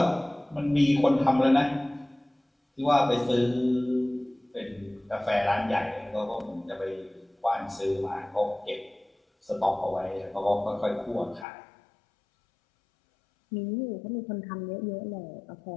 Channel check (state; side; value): drops out; right; at 11.5 s